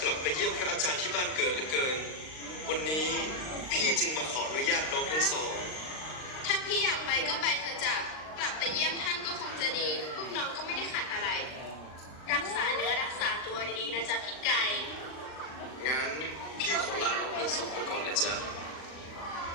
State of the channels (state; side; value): late; right; 39 ms